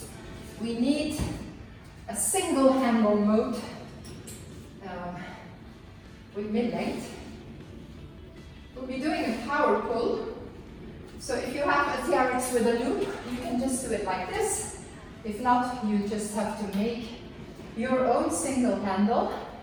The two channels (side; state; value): both; identical; correlation 1.00